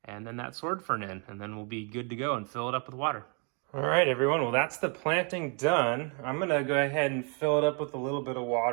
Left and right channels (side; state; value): left; quieter; 37.4 dB